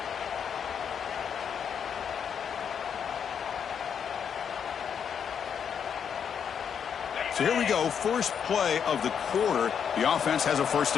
So here we go, first play of the quarter. The offense has a first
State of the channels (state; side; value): quieter; right; 7.6 dB